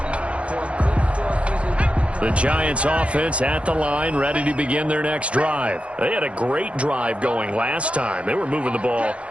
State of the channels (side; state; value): left; late; 0.061 ms